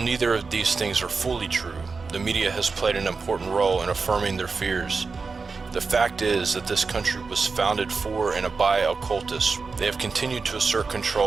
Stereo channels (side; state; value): left; quieter; 4.5 dB